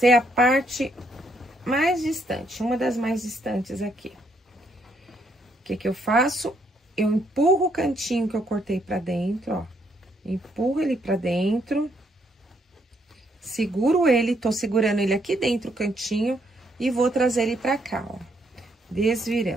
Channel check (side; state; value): both; normal; correlation 0.72